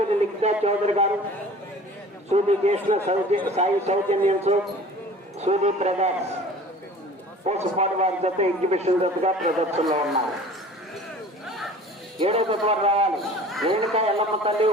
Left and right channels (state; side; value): normal; both; correlation 0.44